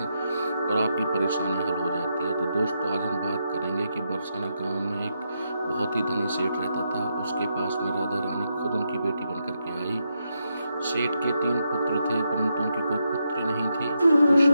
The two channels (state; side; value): inverted; both; correlation -0.82